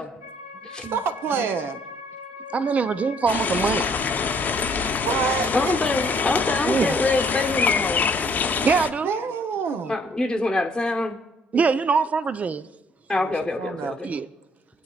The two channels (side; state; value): both; normal; correlation 0.63